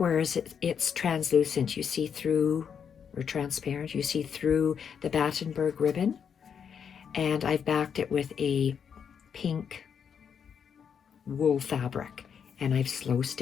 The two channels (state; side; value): quieter; right; 7.4 dB